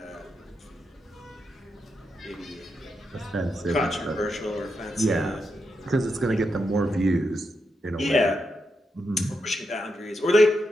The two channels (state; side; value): normal; both; correlation 0.84